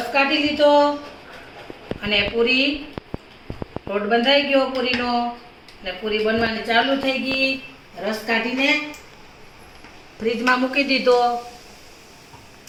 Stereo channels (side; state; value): both; identical; correlation 1.00